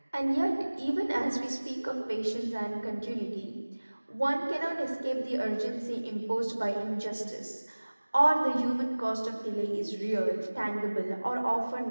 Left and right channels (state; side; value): inverted; both; correlation -1.00